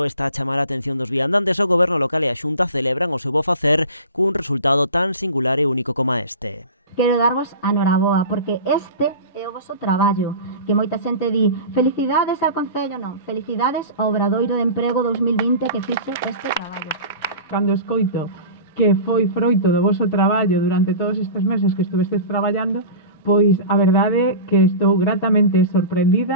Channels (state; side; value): inverted; both; correlation -0.34